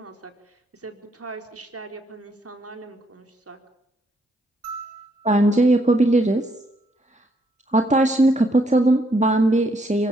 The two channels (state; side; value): normal; both; correlation 0.73